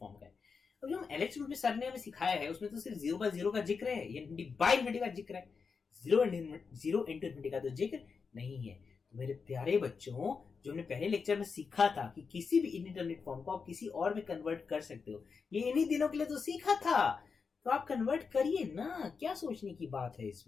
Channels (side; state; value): right; quieter; 5.3 dB